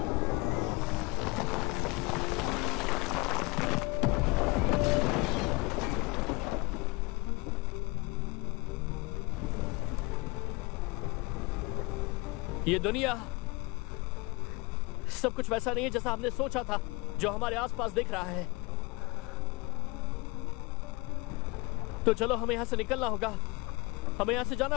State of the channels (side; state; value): right; quieter; 25.2 dB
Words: ये दुनिया सब कुछ वैसा नहीं है जैसा हमने सोचा था, जो हमारे आसपास दिख रहा है। तो चलो हमें यहां से निकलना होगा, हमें यहां से जाना